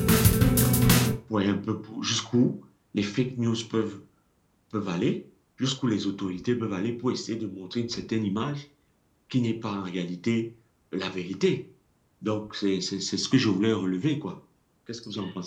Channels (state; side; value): identical; both; correlation 1.00